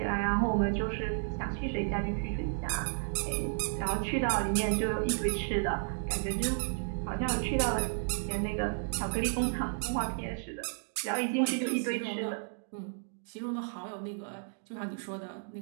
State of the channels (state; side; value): silent; left; digital silence